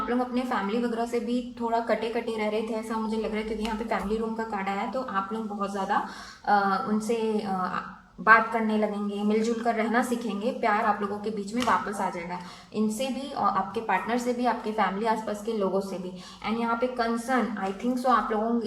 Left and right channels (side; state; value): both; identical; correlation 1.00